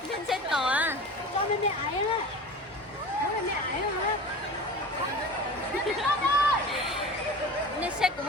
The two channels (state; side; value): normal; both; correlation 0.35